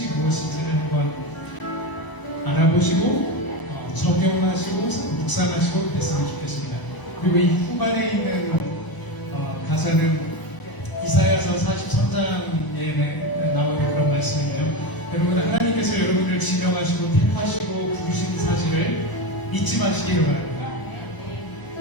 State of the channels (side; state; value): right; late; 1.0 ms